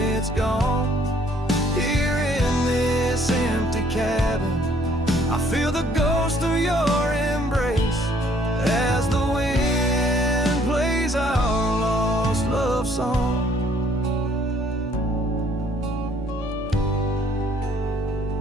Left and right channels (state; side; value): normal; both; correlation 0.62